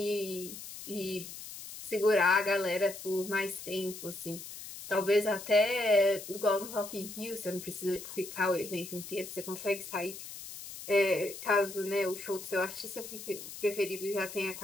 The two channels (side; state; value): left; noise; hiss, 11 dB below the sound